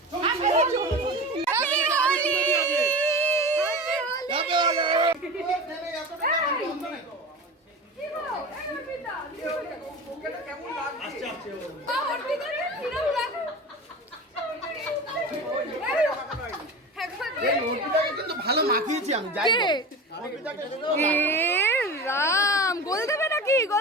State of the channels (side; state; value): both; normal; correlation 0.30